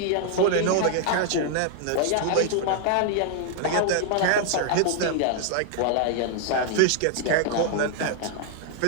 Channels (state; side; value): different; both; correlation 0.00